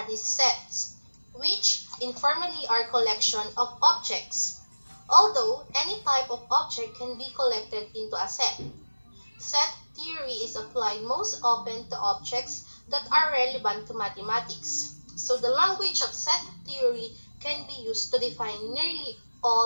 sets, which informally are collection of objects. Although any type of object can be collected into a set. Set theory is applied most often to objects that are relevant to mathematics. So the language of set theory can be used to define nearly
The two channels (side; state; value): both; inverted; correlation -1.00